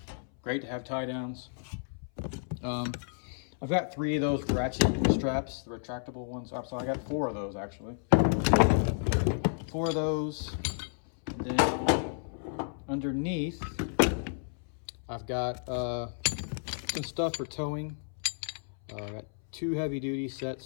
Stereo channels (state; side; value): silent; right; 57 dB below the other